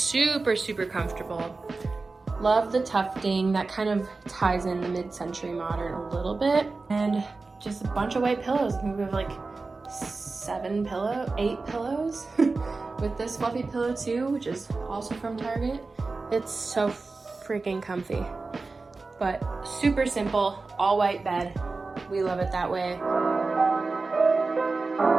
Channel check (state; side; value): quieter; left; 3.8 dB